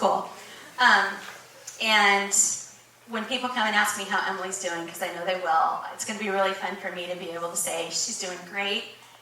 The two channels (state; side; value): identical; both; correlation 1.00